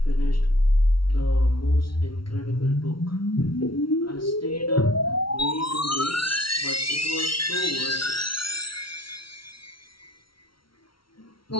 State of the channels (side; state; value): right; late; 0.74 ms